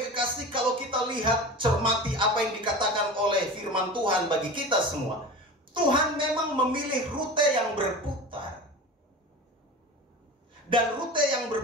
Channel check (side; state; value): both; normal; correlation 0.32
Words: kalau kita lihat, cermati apa yang dikatakan oleh firman Tuhan bagi kita semua, Tuhan memang memilih rute yang berputar. Dan rute yang